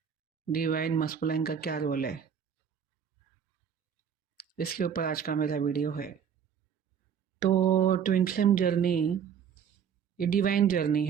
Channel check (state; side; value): quieter; left; 7.8 dB